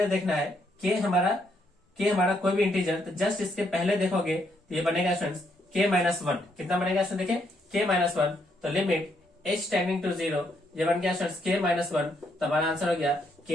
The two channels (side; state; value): both; normal; correlation 0.74